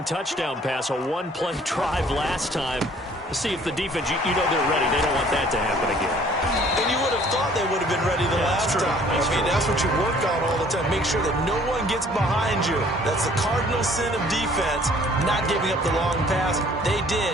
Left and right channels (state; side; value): normal; both; correlation 0.56